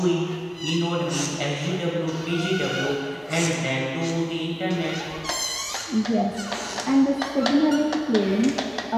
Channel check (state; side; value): identical; both; correlation 1.00